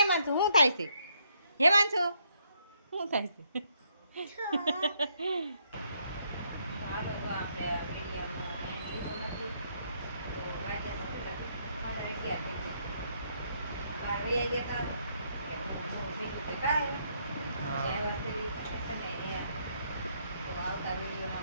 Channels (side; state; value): both; inverted; correlation -0.72